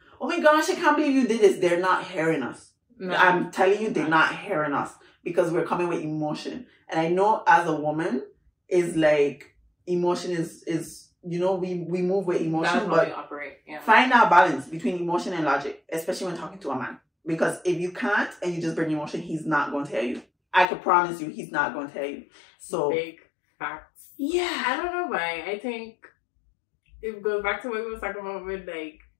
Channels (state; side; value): drops out; right; at 20.7 s